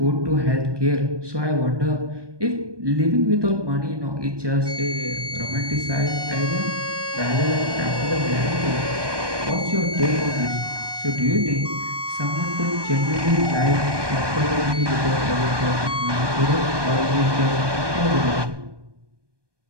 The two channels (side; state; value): left; late; 1.2 ms